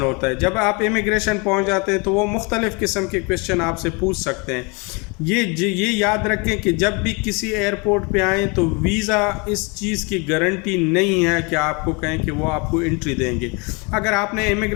ہوتا ہے. جب آپ امیگریشن پہنچ جاتے ہیں تو وہ مختلف قسم کے کویشچن آپ سے پوچھ سکتے ہیں. یہ یاد رکھیں کہ جب بھی کسی ایئرپورٹ پہ آئیں تو ویزا اس چیز کی گارنٹی نہیں ہے کہ آپ کو کہیں کہ وہ آپ کو انٹری دیں گے. اگر آپ نے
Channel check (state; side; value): quieter; right; 30.4 dB